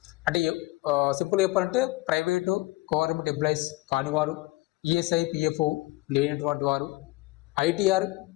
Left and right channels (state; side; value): quieter; right; 21.3 dB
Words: అంటే సింపుల్ చెప్పాలంటే ప్రైవేటు గవర్నమెంట్ ఎంప్లాయీస్ కానివారు, ఈఎస్ఐ పిఎఫ్ లేనటువంటి వారు, ఐటీఆర్